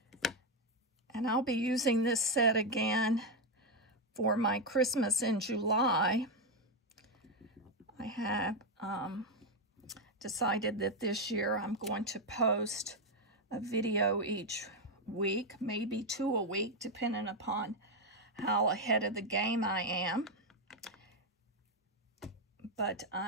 And I'll be using this set again for my Christmas in July. I have decided that this year I'm going to post a video each week, maybe 2 a week, depending upon how ahead of the game I am. But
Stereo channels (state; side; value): normal; both; correlation 0.05